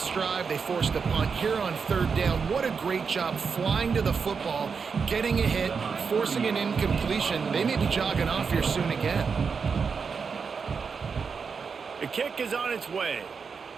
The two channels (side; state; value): left; quieter; 5.6 dB